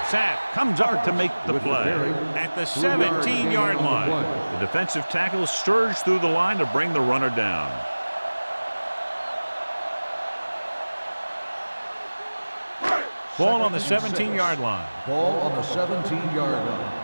Sapp comes up to make the play at the 17-yard line. The defensive tackle surged through the line to bring the runner down. Ball on the 17-yard line. Ball on the 17-yard line.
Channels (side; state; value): both; inverted; correlation -1.00